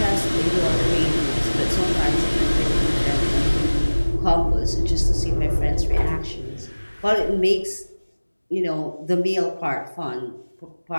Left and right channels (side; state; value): both; inverted; correlation -1.00